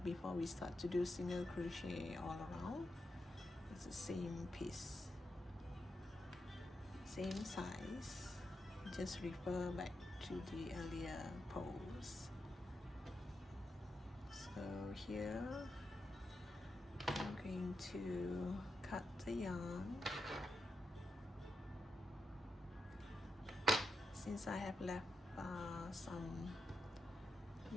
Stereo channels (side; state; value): both; normal; correlation 0.87